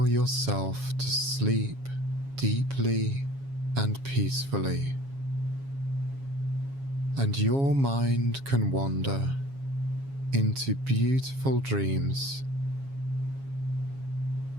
yourself to sleep deeply and peacefully, and your mind can wander into beautiful dreams.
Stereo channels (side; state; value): left; late; 7.3 ms